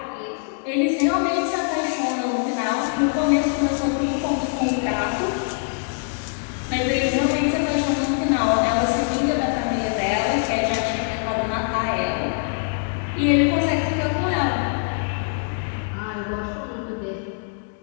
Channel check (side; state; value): right; silent; 63 dB below the other